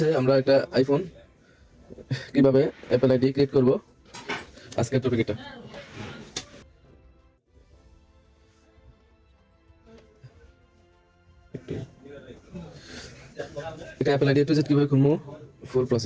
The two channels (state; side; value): identical; both; correlation 1.00